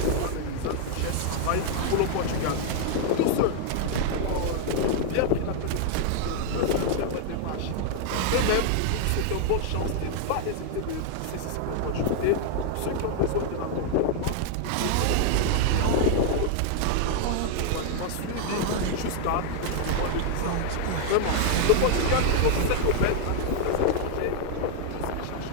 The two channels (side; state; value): both; different; correlation 0.00